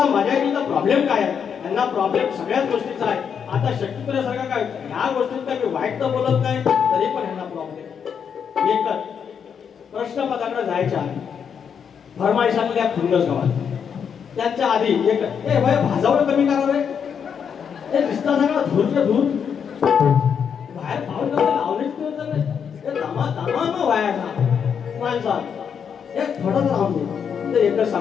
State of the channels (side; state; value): right; quieter; 7.3 dB